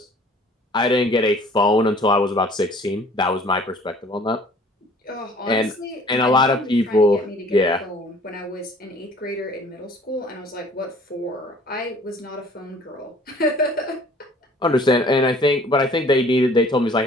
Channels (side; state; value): both; normal; correlation 0.53